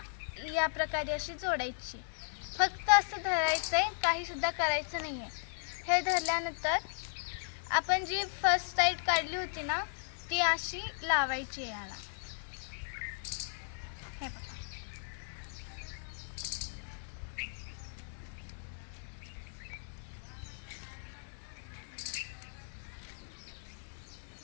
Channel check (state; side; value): silent; right; 54 dB below the other